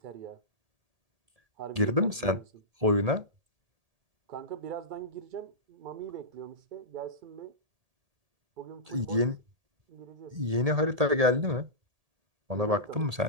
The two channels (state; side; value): late; left; 1.8 ms